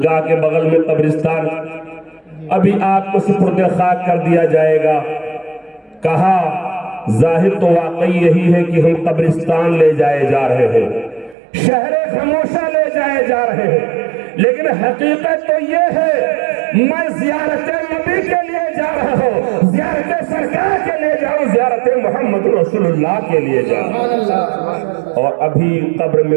کے بغل میں قبرستان, ابھی آپ کو سپرد خاک کر دیا جائے گا. کہا ظاہر تو واقعی یہی ہے کہ ہم قبرستان لے جائے جا رہے ہیں, شہر خاموشہ لے جائے جا رہے ہیں, لیکن حقیقت تو یہ ہے میں زیارت نبی کے لیے جا رہا ہوں, زیارت سرکار کے لیے جاؤں, زیارت محمد رسول اللہ کے لیے جاؤں. اور ابھی قبر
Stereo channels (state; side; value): drops out; left; at 11.4 s